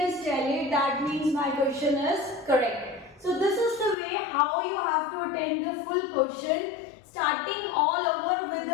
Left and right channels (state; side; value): drops out; right; at 4.0 s